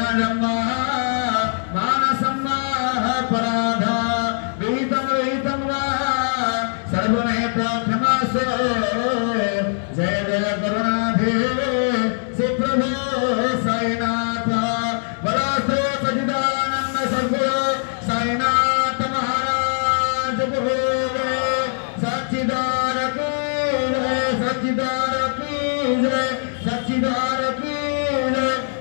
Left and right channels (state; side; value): silent; right; digital silence